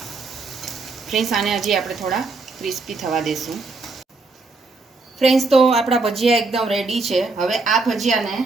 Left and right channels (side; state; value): left; quieter; 3.7 dB